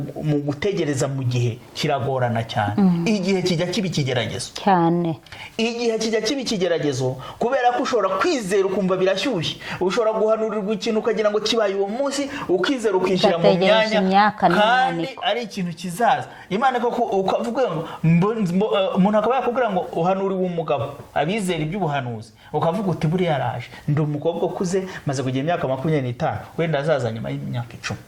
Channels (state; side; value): identical; both; correlation 1.00